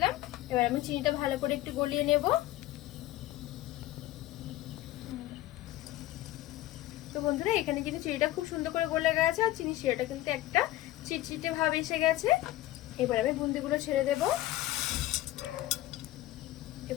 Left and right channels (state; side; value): quieter; right; 15.8 dB